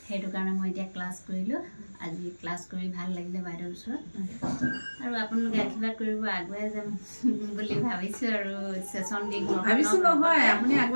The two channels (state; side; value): inverted; both; correlation -1.00